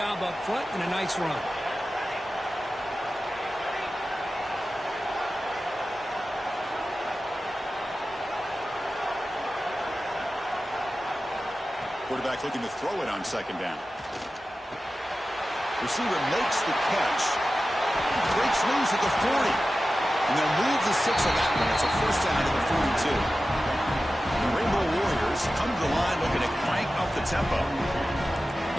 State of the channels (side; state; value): both; normal; correlation 0.94